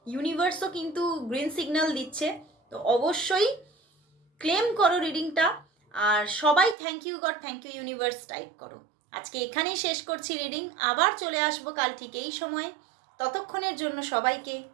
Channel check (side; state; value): left; drops out; at 6.8 s